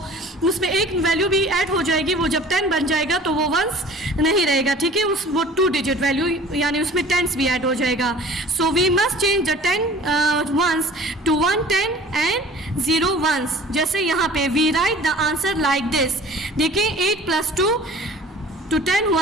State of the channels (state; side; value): normal; both; correlation 0.46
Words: उसमें एक वैल्यू भी ऐड हो जाएगी, वो जब 10 बन जाएगा तो वो वंस नहीं रहेगा, ठीक है। वो 2 डिजिट वैल्यू यानी उसमें 10s भी ऐड हो जाएगा। So we must change the 10 ones to 1 10 and 0 ones. जैसे यहाँ पे we write the answer like this, देखिए 8 + 2 to 10